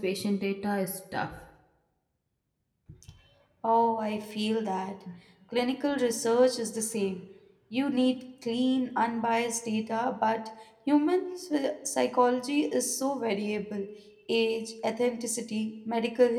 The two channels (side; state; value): both; identical; correlation 1.00